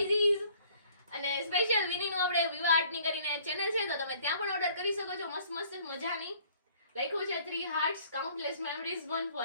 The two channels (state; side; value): inverted; both; correlation -0.57